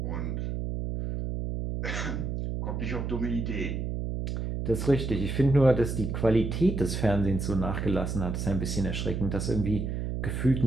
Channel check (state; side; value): noise; right; hum, 3 dB below the sound